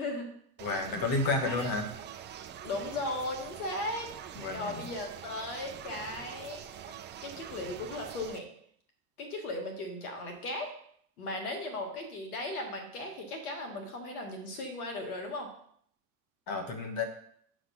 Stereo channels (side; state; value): both; normal; correlation 0.02